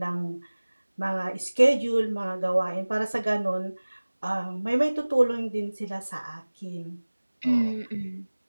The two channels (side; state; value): both; inverted; correlation -1.00